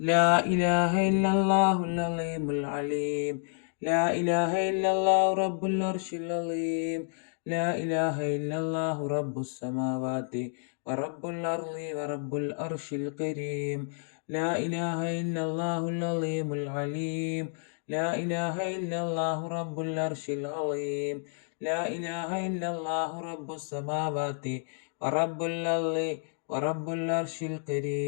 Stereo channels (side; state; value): right; silent; digital silence